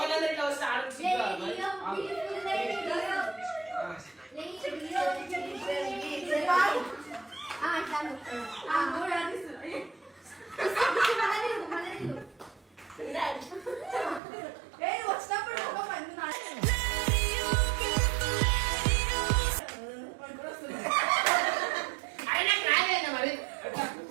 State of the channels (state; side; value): drops out; left; at 14.2 s